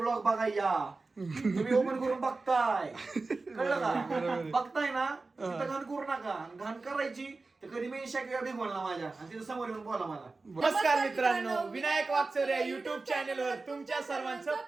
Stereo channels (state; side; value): quieter; left; 3.7 dB